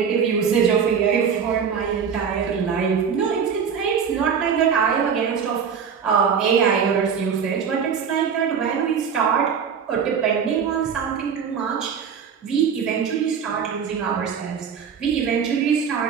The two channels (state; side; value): quieter; left; 6.9 dB